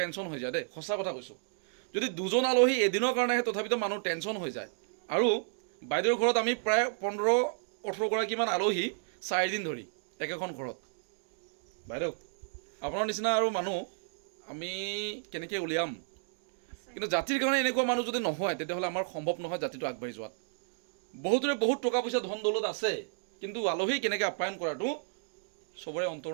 হৈ যায় দেই, সঁচা কথা কৈছোঁ। যদি দুজন আলহী এদিনৰ কাৰণে আহে তথাপিতো মানুহ টেনশ্যন হৈ যায়। আৰু বাইদেউৰ ঘৰত আমি প্ৰায় 15-18 গৰাকীমান আলহী 4 দিন ধৰি একেখন ঘৰত। বাইদেউ আপোনাৰ নিচিনা আৰু মানুহ আমি কেনেকৈ উলিয়াম, কিন্তু জাতিৰ কাৰণে এনেকুৱা মানুহ যদি নহয় তেতিয়াহ'লে আমাৰ সম্ভৱ নহয় জাতিটো আগবাঢ়ি যোৱাত। বহুতৰে বহুত টকা পইচা ধন দৌলত আছে, কিন্তু আলহী কেনেকৈ আপ্যায়ন কৰাটো চবৰে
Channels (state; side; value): silent; left; digital silence